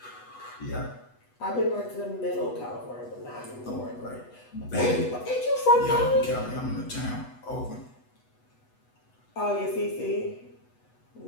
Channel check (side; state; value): right; late; 8.1 ms